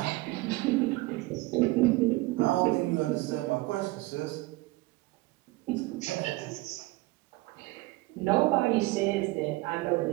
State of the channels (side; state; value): left; quieter; 20.9 dB